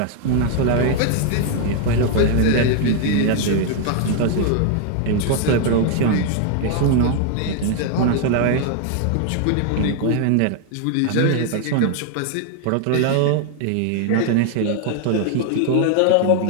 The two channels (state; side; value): different; both; correlation 0.00